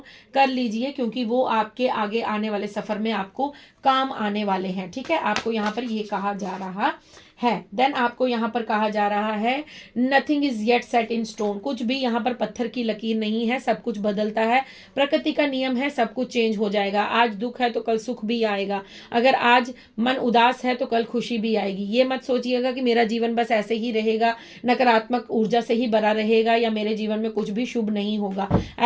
कर लीजिए, क्योंकि वो आपके आगे आने वाले सफर में आपको काम आने वाले हैं। ठीक है, आपको यहाँ पर ये कहा जा रहा है। देन आपको यहाँ पर कहा जा रहा है nothing is yet set in stone. कुछ भी यहाँ पर पत्थर की लकीर नहीं है, सब कुछ बदलता है, प्रकृति का नियम है, सब कुछ चेंज हो जाएगा। आज दुख है तो कल सुख भी आएगा, अगर आज मन उदास है तो कल खुशी भी आएगी। ये मत सोचिएगा कि मेरा जीवन बस ऐसे ही रहेगा, नकारात्मक ऊर्जा से ही भरा रहेगा, या मेरे जीवन में कुछ भी शुभ नहीं होगा,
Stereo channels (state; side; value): identical; both; correlation 1.00